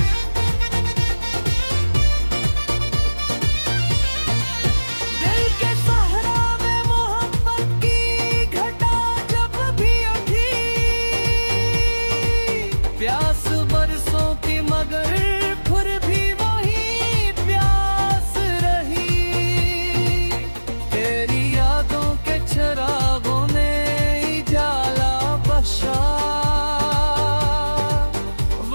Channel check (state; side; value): inverted; both; correlation -1.00